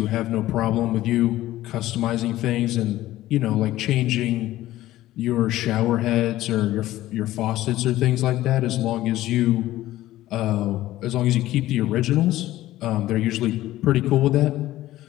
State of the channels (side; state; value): right; quieter; 15.3 dB